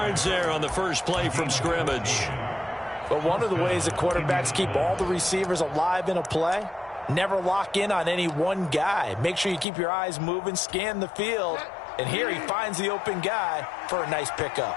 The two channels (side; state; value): right; drops out; at 9.7 s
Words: there on the first play from scrimmage. But one of the ways that quarterbacks keep all the receivers alive in a play, never lock in on any one guy. Make sure you keep your eyes moving, scan the field. And here he finds the open guy for a nice pickup.